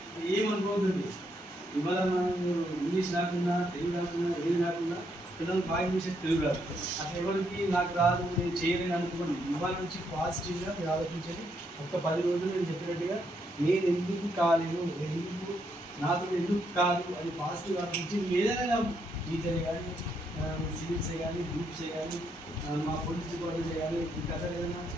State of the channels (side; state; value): both; normal; correlation 0.76